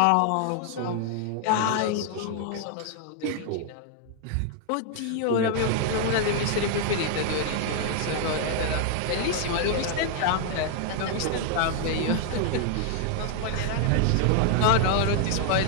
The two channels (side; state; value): both; different; correlation 0.00